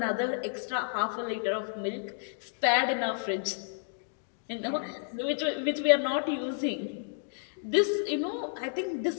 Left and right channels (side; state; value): right; silent; digital silence